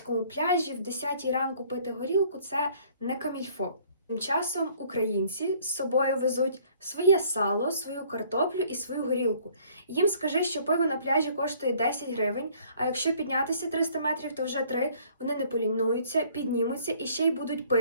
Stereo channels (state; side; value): inverted; both; correlation -0.58